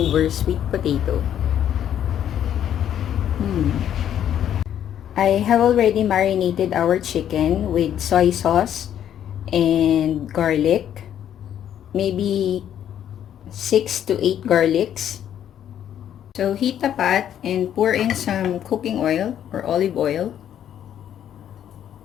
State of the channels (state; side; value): quieter; right; 10.1 dB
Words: sweet potato? I have already marinated our chicken with soy sauce and garlic. Maybe 6 to 8 garlics. So heat a pot and pour in some cooking oil or olive oil.